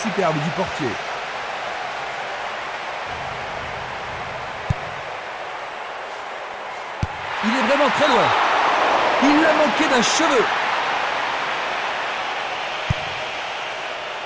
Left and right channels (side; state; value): both; identical; correlation 1.00